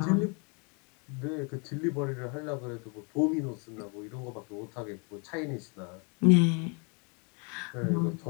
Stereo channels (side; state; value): right; quieter; 34.8 dB